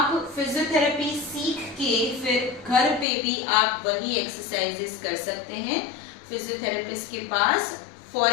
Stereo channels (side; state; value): right; drops out; at 3.1 s